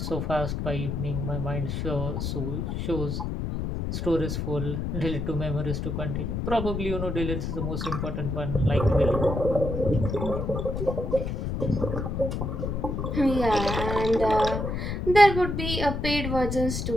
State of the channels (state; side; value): noise; left; rumble, 2 dB below the sound